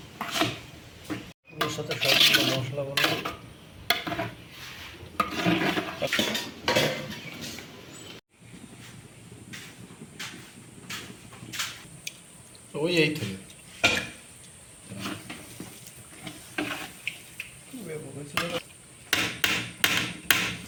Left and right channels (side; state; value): both; identical; correlation 1.00